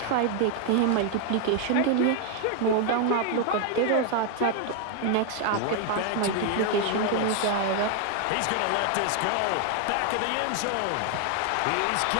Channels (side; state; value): both; different; correlation 0.00